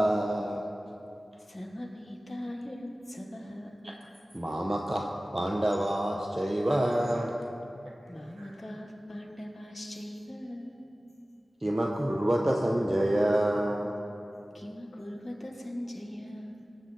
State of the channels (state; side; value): normal; both; correlation 0.97